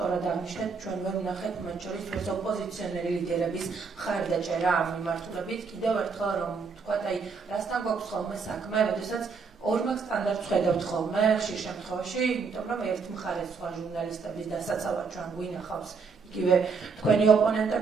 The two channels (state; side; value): quieter; left; 5.0 dB